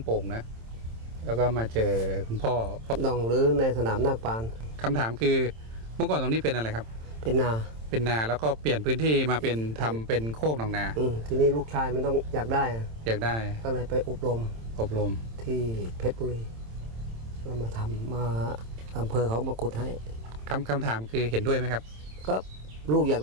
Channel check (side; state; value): left; late; 27 ms